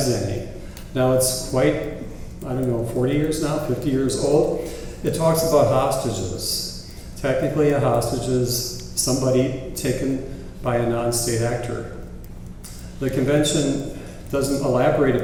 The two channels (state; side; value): identical; both; correlation 1.00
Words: any. Now it's quite, 40 years now, 50 years old. It talks about hostages. Technically a hostage is somebody taken by a non-state actor. The convention doesn't elaborate